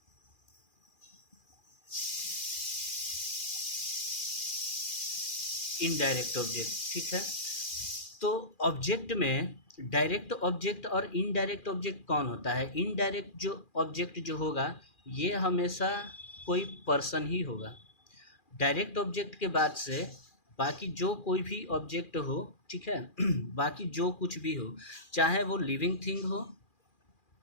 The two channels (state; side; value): late; right; 2.4 ms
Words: इनडायरेक्ट ऑब्जेक्ट, ठीक है। तो ऑब्जेक्ट में डायरेक्ट ऑब्जेक्ट और इनडायरेक्ट ऑब्जेक्ट कौन होता है। इनडायरेक्ट जो ऑब्जेक्ट जो होगा ये हमेशा कोई पर्सन ही होगा। डायरेक्ट ऑब्जेक्ट के बाद से बाकी जो कोई भी ऑब्जेक्ट हो, ठीक है, बाकी जो कुछ भी हो, चाहे वो लिविंग थिंग हो